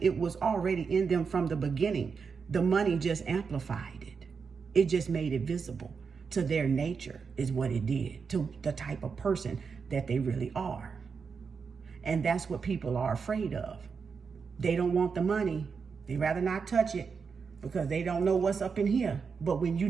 it was already in them from the beginning. The money just amplified it. It just made it visible to their nature is what it did, to the type of person that they really are. And that's what people are afraid of. They don't want the money. They rather not touch it because they don't know what's up in here. But when you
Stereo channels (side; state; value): left; quieter; 5.6 dB